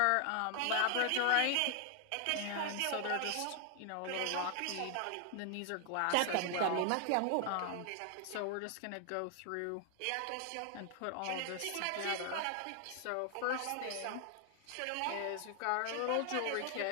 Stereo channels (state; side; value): different; both; correlation 0.00